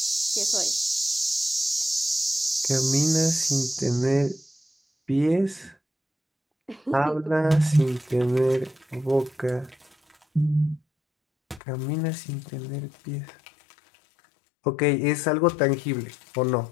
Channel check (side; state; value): right; drops out; at 11.6 s